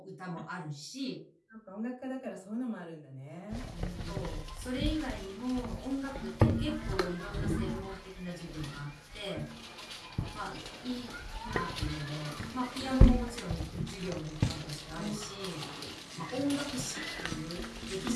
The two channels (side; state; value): both; identical; correlation 1.00